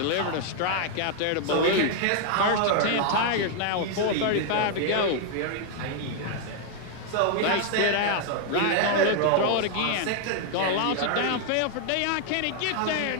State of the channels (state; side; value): different; both; correlation 0.00